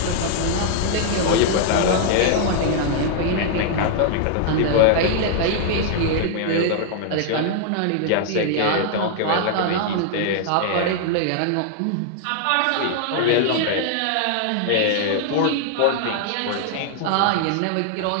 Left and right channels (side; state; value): both; different; correlation -0.01